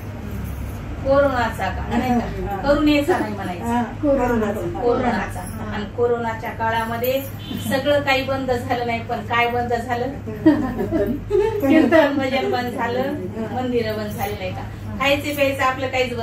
कोरोनाचा काळ नाही का, करुणेचा नाही म्हणायचा, कोरोनाचा। आणि कोरोनाच्या काळामध्ये सगळं काही बंद झालं नाही, पण काय बंद झालं, कीर्तन भजन बंद झालं, मंदिरं बंद झाली नाही का, खायचे प्यायचं आपलं काहीच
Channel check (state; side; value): identical; both; correlation 1.00